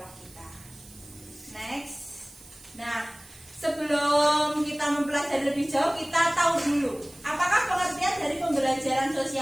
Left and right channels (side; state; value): right; noise; hiss, 21 dB below the sound